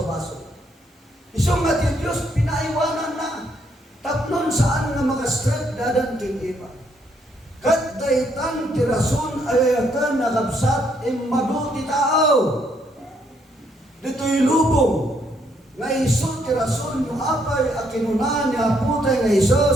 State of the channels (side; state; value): both; normal; correlation 0.72